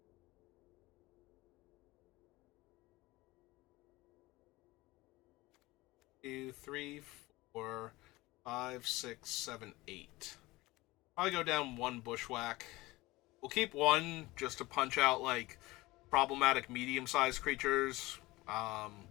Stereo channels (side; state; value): right; quieter; 20.2 dB